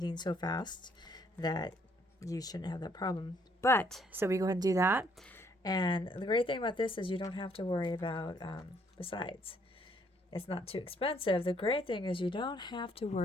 so fast that you shouldn't have that problem. But, so we go ahead and do that. And the great thing about this is you don't have to worry about the sides. It's not too expensive. The great thing is you don't have to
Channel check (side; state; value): both; normal; correlation 0.67